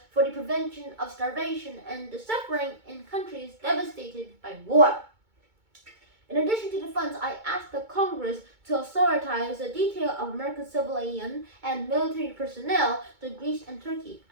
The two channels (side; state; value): left; late; 2.2 ms